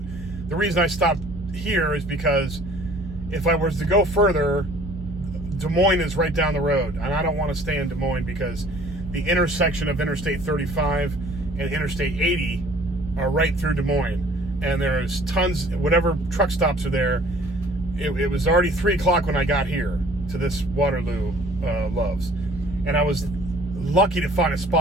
the reason I stopped here is because if I was to go further, Des Moines is right down the road, and I don't want to stay in Des Moines because the intersection of Interstate 35 and Interstate 80 are right through Des Moines, and there's tons, whatever truck stops are there. It was already 3 o'clock when I got here to this Waterloo Loves, and I was lucky to find a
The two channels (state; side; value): normal; both; correlation 0.53